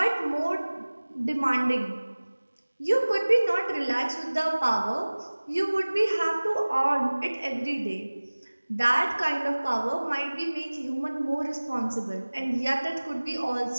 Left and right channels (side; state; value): both; inverted; correlation -1.00